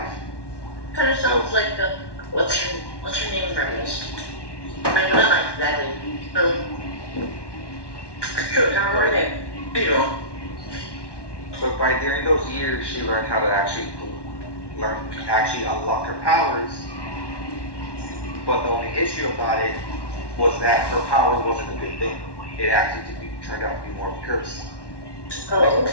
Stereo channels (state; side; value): late; right; 1.1 ms